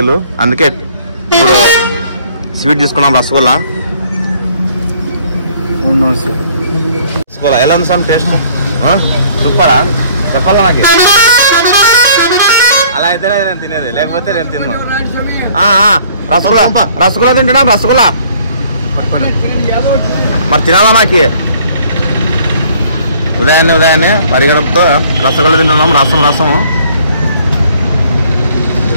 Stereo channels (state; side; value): inverted; both; correlation -0.57